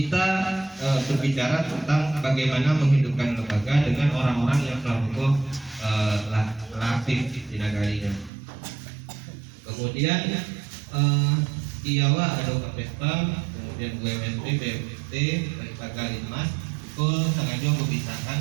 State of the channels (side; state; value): left; drops out; at 8.3 s